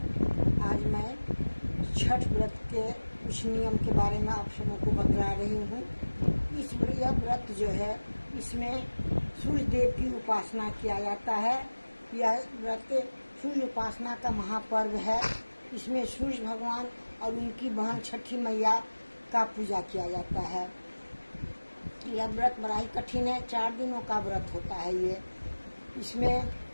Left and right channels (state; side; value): inverted; both; correlation -1.00